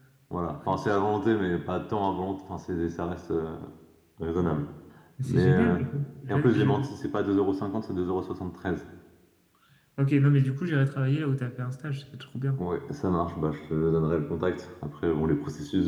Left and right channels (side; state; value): both; identical; correlation 1.00